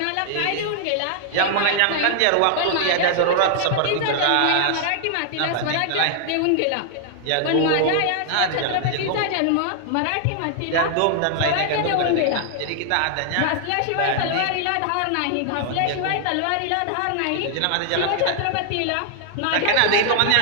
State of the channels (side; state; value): both; different; correlation -0.01